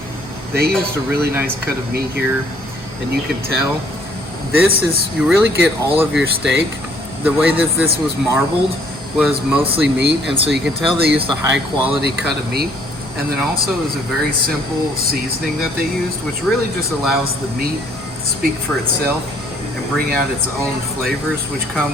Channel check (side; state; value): both; normal; correlation 0.62